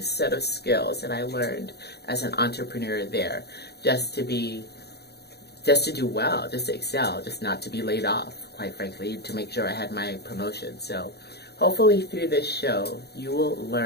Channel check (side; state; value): right; late; 0.48 ms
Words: set of skills that I learned as an entrepreneur there, just to do well, just to excel, just not to be laid off, quite frankly, to make sure I had my promotion. So hopefully through this show, you will